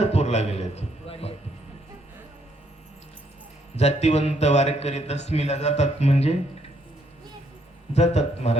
गेले. जातीवंत वारकरी दशमीला जातात म्हणजे जातात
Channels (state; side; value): normal; both; correlation 0.71